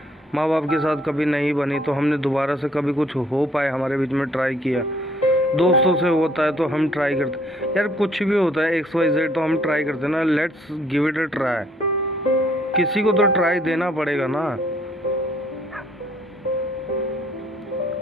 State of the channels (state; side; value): normal; both; correlation 0.63